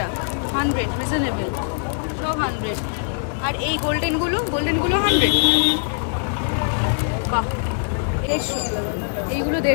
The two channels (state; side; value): silent; right; digital silence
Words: 100 রিজনেবল, সব 100। আর এই গোল্ডেনগুলো 100? বাহ। 150। এইগুলো